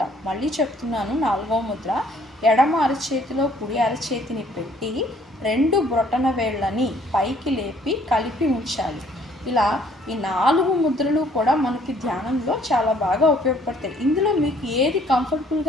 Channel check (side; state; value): both; normal; correlation 0.61